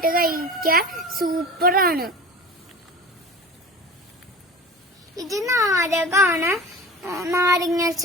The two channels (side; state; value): both; normal; correlation 0.36